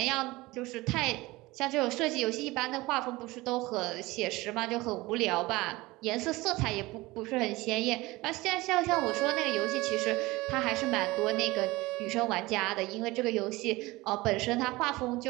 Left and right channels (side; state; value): left; quieter; 20.7 dB